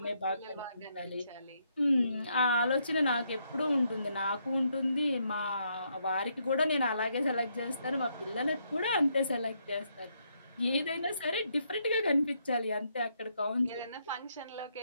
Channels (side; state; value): both; inverted; correlation -0.76